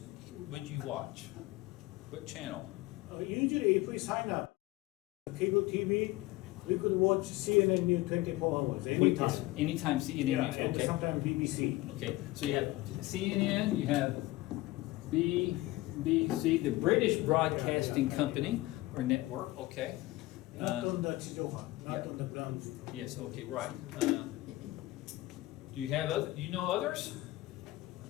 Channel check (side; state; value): right; quieter; 19.1 dB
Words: would you watch? What channel? Usually if we sign up cable TV, we could watch CNN News 24 hours, anytime. Anytime CNN News, And okay. sometimes BBC. Okay, so you have CNN, you have BBC, the British Broadcasting Company, or network, okay. Not on the Chijohan, not yeah. on the ground. Yes, okay, right. Do you have other? Do you know others?